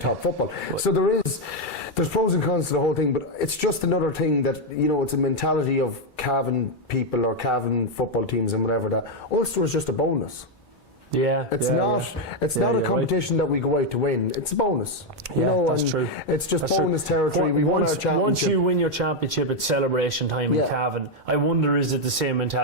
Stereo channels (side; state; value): both; normal; correlation 0.02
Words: football. So there's pros and cons to the whole thing, but it's just another thing that, it's a mentality of Cavan people or Cavan football teams and whatever, that Ulster is just a bonus. It's not a competition that we go out to win. It's a bonus. That's true. It's just bonus territory. We won our championship. Once you win your championship, it's celebration time in Cavan. I wonder, is it the same